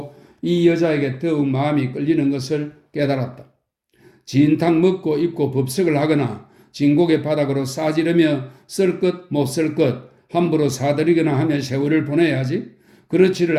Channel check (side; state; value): both; identical; correlation 1.00